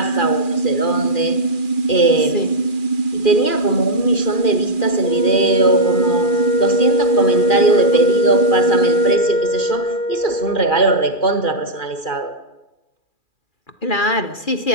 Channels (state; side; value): late; right; 2.4 ms